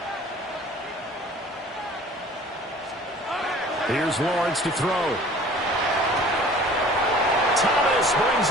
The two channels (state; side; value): normal; both; correlation 0.48